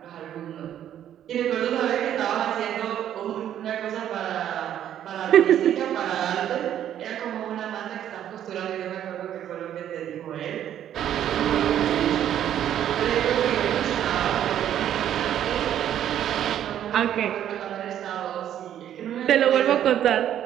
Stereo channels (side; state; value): left; quieter; 10.7 dB